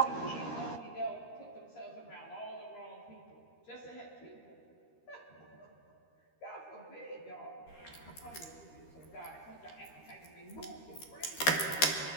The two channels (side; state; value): right; late; 13 ms